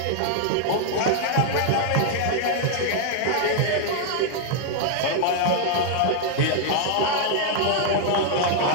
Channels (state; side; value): different; both; correlation 0.00